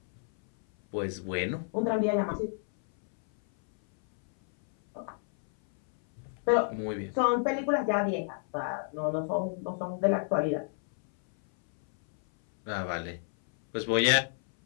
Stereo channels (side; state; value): right; silent; 58 dB below the other